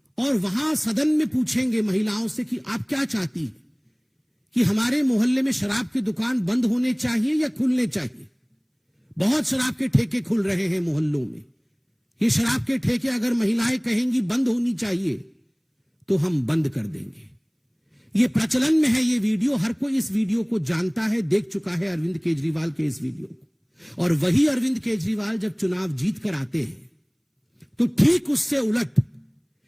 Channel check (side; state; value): both; identical; correlation 1.00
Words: और वहां सदन में पूछेंगे महिलाओं से कि आप क्या चाहती हैं, कि हमारे मोहल्ले में शराब की दुकान बंद होने चाहिए या खुलने चाहिए। बहुत शराब के ठेके खुल रहे हैं मोहल्लों में। ये शराब के ठेके अगर महिलाएं कहेंगी बंद होनी चाहिए तो हम बंद कर देंगे। ये प्रचलन में है ये वीडियो, हर कोई इस वीडियो को जानता है, देख चुका है अरविंद केजरीवाल के इस वीडियो को। और वही अरविंद केजरीवाल जब चुनाव जीत कर आते हैं, तो ठीक उससे उलट